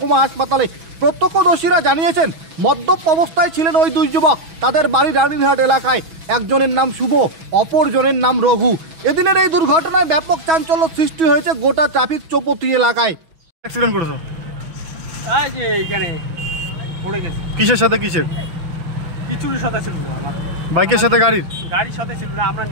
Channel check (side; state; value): left; late; 6.0 ms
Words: হাসপাতালে। প্রত্যক্ষদর্শীরা জানিয়েছেন মদ্যপ অবস্থায় ছিলেন ওই দুই যুবক। তাদের বাড়ি রানীরহাট এলাকায়। একজনের নাম শুভ, অপরজনের নাম রঘু। এদিনের এই দুর্ঘটনায় ব্যাপক চাঞ্চল্য সৃষ্টি হয়েছে গোটা ট্রাফিক চৌপতি এলাকায়। অ্যাক্সিডেন্ট করেছো? এই যে এখানে পড়ে গেছে। কিসের সাথে কিসের? কিছুর সাথে ছিল না, আমার বাইকের সাথে গাড়ির? গাড়ির সাথে ছিল না, আমরা